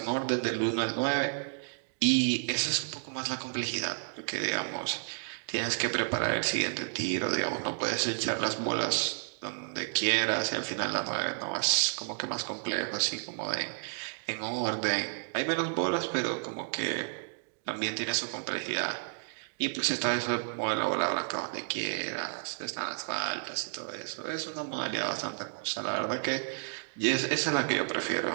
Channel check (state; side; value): silent; left; digital silence